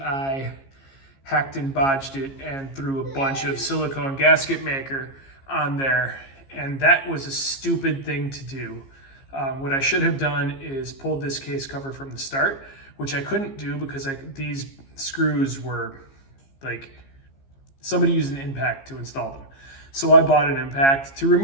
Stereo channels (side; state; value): right; late; 15 ms